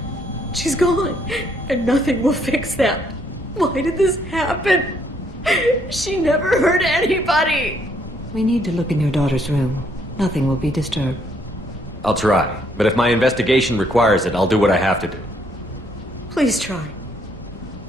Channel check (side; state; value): both; normal; correlation 0.69